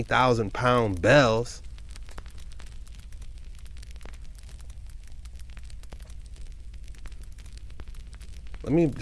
pound bells. Let me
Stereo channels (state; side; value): identical; both; correlation 1.00